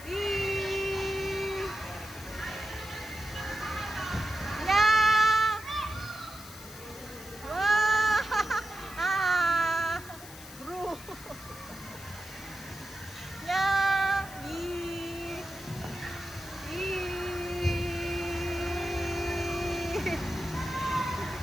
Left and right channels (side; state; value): left; noise; hiss, 16 dB below the sound